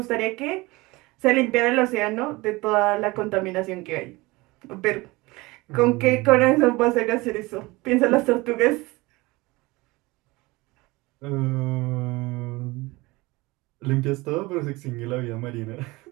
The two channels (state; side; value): quieter; left; 22.3 dB